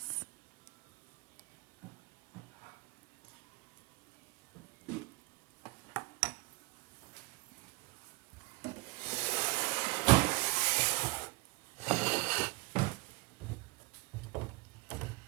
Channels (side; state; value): left; quieter; 24.3 dB